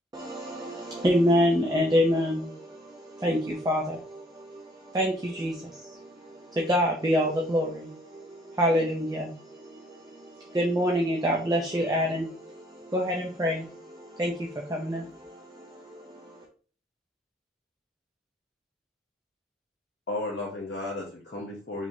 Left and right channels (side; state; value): both; normal; correlation 0.61